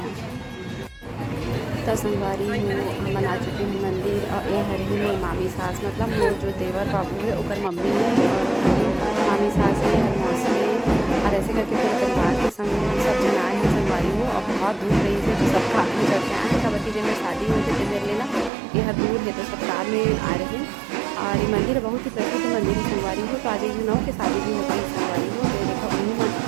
तो संगवारी हो हम आ चुके हैं मंदिर और ये हर ही मोर मामी सास मतलब मोर जो देवर बाबू है ओकर मम्मी है और मामी सास है हर मौसी है और ऐसे करके पूरे परिवार के संग सब जन आए हैं संगवारी हो और बहुत दूर रही है तो सब कार में चढ़ के आए हैं। कबड्डी जब में शादी हुई थी मेरे लेना ये हर दूर है तो सब कार में आ रहे हैं और ये मंदिर बहुत ही प्रसिद्ध मंदिर है संगवारी हो। तो आज एक नौ की शादी भी होती है संगवारी हो तो देखो उन्हीं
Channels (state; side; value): drops out; left; at 18.5 s